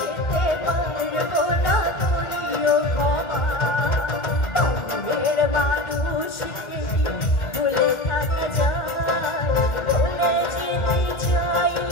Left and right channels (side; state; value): right; late; 2.1 ms